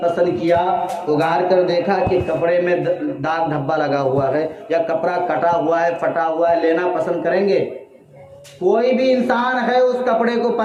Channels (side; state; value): both; identical; correlation 1.00